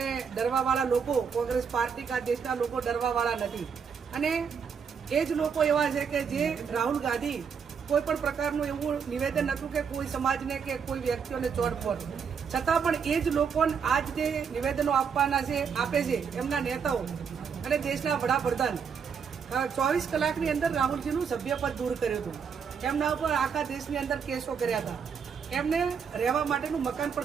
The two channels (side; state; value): left; quieter; 6.6 dB